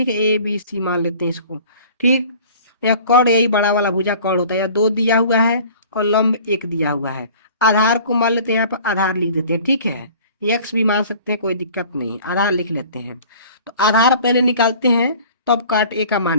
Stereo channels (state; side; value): inverted; both; correlation -0.47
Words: है, ABC मान लेते हैं इसको, ठीक। यह कर्ण यही बड़ा वाला भुजा कर्ण होता है। यह 2 दिया हुआ है और लंब 1 दिया हुआ है। आधार को मान लेते हैं, यहाँ पर आधार लिख देते हैं, ठीक है। एक्स भी मान सकते हैं, कोई दिक्कत नहीं, आधार लिख लेते हैं। तो आधार पहले निकालते हैं, तब काट ए का